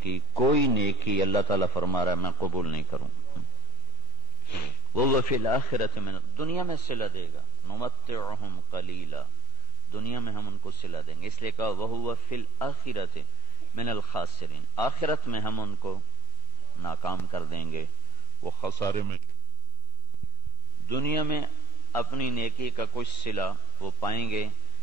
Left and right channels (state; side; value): normal; both; correlation -0.02